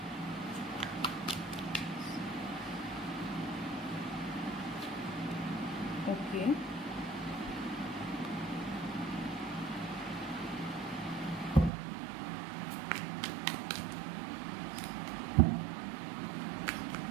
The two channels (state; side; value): drops out; left; at 11.7 s